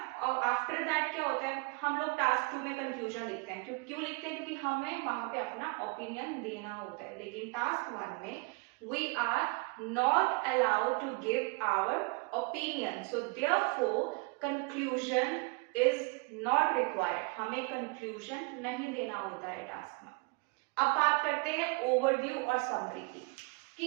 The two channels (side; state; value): left; quieter; 30.0 dB